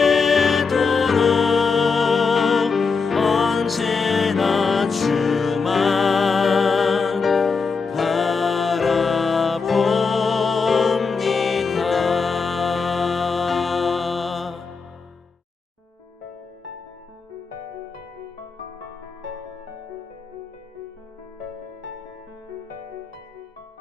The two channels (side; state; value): right; quieter; 4.9 dB